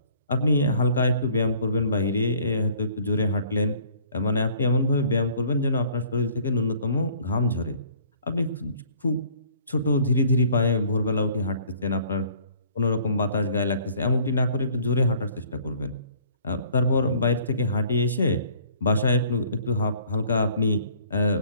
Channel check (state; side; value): inverted; both; correlation -0.56